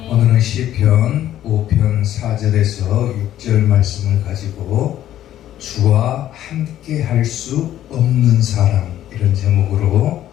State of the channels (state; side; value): quieter; right; 12.2 dB